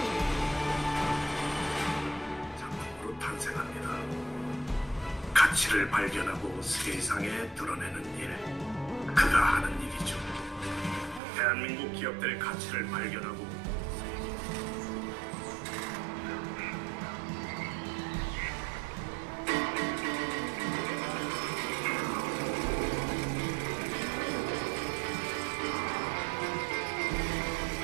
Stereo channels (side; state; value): left; drops out; at 11.2 s